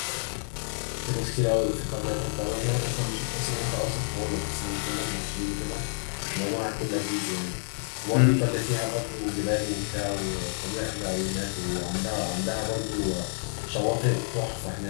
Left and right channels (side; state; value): right; silent; digital silence